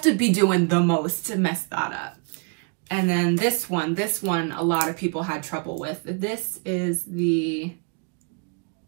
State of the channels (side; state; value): left; quieter; 36.2 dB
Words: to be doing the most to mess that up. And then this one a lot of people had trouble with. This is the,